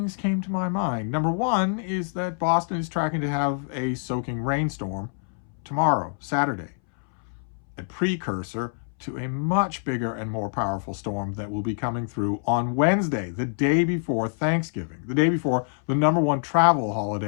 came to my mind. Number one is that Boston is tracking to have a soaking rainstorm tomorrow, Saturday. A precursor to a much bigger and more powerful storm that will be coming through on Wednesday, the day before Thanksgiving, the day before the #1 travel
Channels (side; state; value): right; silent; 61 dB below the other